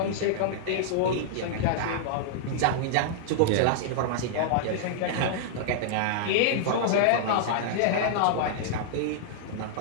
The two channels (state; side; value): different; both; correlation -0.01